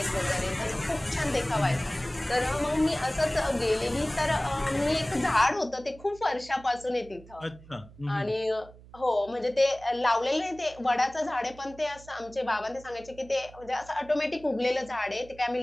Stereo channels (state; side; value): noise; right; hum, 21 dB below the sound